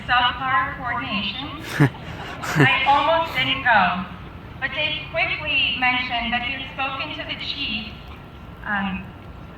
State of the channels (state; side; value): identical; both; correlation 1.00